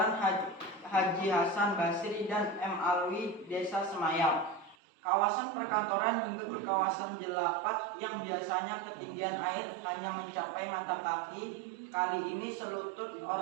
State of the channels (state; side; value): drops out; left; at 4.8 s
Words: Haji Hasan Basri dan M. Alwi, Desa Semayap. Kawasan perkantoran hingga ke kawasan Jelapat yang biasanya ketinggian air hanya mencapai mata kaki, kali ini selutut